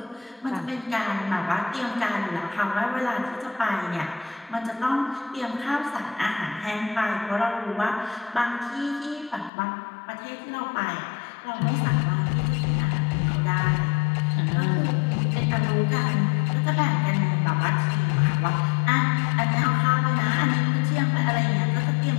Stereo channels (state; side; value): drops out; right; at 9.5 s